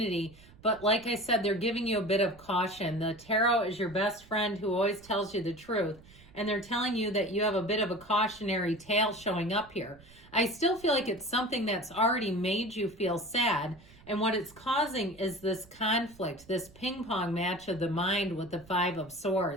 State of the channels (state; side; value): noise; right; rumble, 23 dB below the sound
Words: but like I said, they're giving you a bit of caution. The tarot is your best friend who always tells you the truth, and they're telling you that you have a bit of a cautionary tale showing up here. I still feel like it's something that's already made you feel sad, and what it's causing is this conflict, this ping pong match of the mind with the Five of